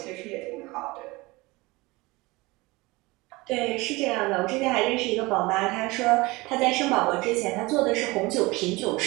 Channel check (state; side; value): quieter; left; 22.6 dB